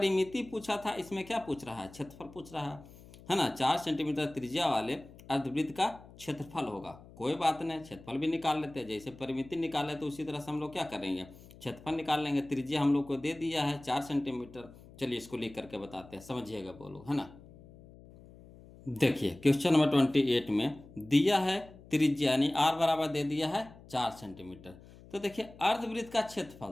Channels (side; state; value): left; noise; hum, 20 dB below the sound